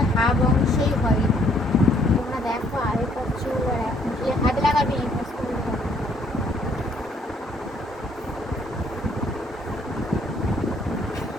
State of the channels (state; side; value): normal; both; correlation 0.65